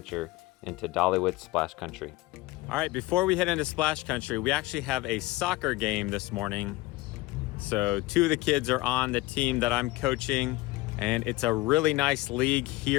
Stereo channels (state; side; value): quieter; right; 19.4 dB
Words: into Dollywood Splash Country. All right, before we head into Splash Country, we actually have a soccer game this morning. So two of the kids are on the team that I'm coaching, and it's a really nice league